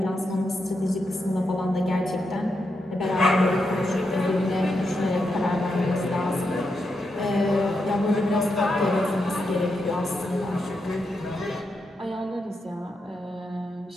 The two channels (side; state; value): both; normal; correlation 0.84